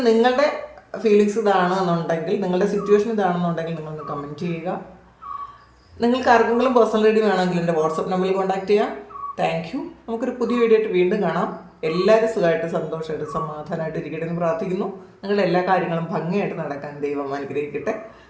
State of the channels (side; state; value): both; identical; correlation 1.00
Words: നിങ്ങളുടെ ഫീലിങ്സ് ഇതാണെന്നുണ്ടെങ്കിൽ, നിങ്ങളുടെ സിറ്റുവേഷൻ ഇതാണെന്നുണ്ടെങ്കിൽ നിങ്ങളൊന്ന് കമൻറ്റ് ചെയ്യുക. നിങ്ങൾക്ക് ആർക്കെങ്കിലും പേഴ്സണൽ റീഡിംഗ് വേണമെങ്കിൽ എൻ്റെ വാട്സപ്പ് നമ്പറിൽ കോൺടാക്ട് ചെയ്യാം. Thank you. നമുക്കൊരു പുതിയ വീഡിയോ ആയിട്ട് വീണ്ടും കാണാം. എല്ലാവരും സുഖമായിട്ട് സന്തോഷമായിട്ട് സമാധാനമായിട്ട് ഇരിക്കട്ടെ എന്ന് പ്രാർത്ഥിക്കുന്നു. നിങ്ങളുടെ എല്ലാ കാര്യങ്ങളും ഭംഗിയായിട്ട് നടക്കാൻ ദൈവം അനുഗ്രഹിക്കട്ടെ.